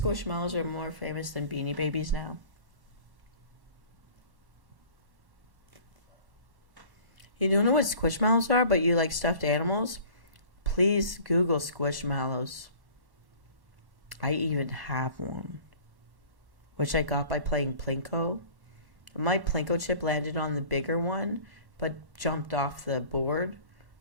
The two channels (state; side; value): late; left; 1.1 ms